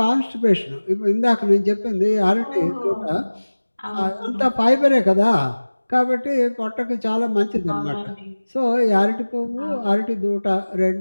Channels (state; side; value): inverted; both; correlation -1.00